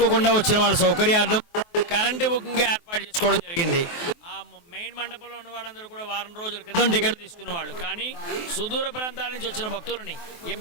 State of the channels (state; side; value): late; right; 23 ms